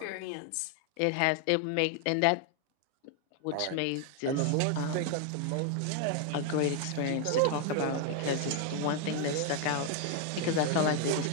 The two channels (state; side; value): different; both; correlation 0.01